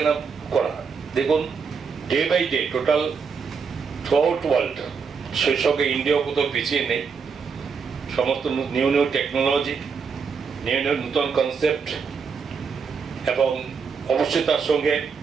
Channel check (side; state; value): left; quieter; 5.7 dB